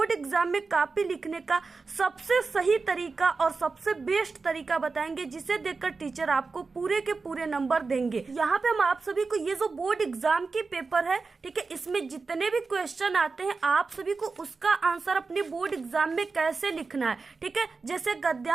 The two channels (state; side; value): quieter; left; 4.3 dB